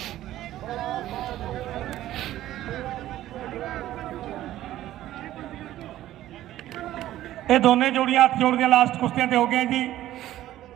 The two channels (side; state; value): left; quieter; 13.9 dB